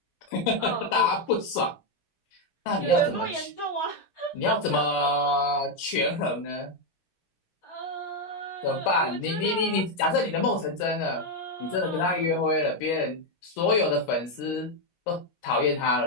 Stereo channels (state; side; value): late; right; 17 ms